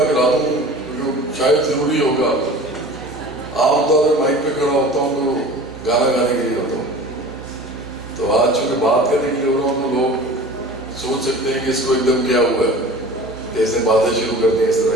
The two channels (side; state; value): both; normal; correlation 0.40